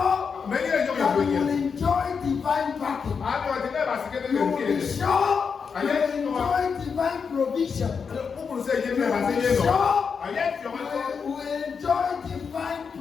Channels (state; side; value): quieter; right; 5.9 dB